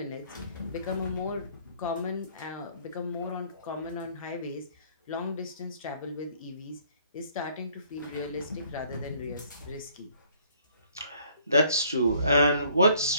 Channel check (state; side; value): inverted; both; correlation -0.61